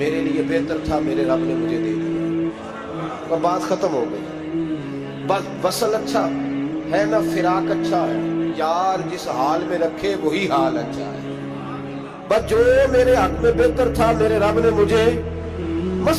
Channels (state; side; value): identical; both; correlation 1.00